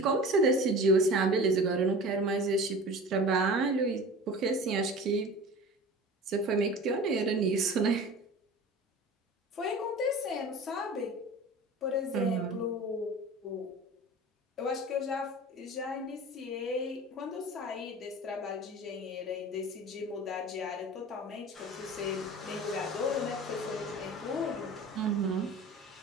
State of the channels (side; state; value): both; normal; correlation 0.38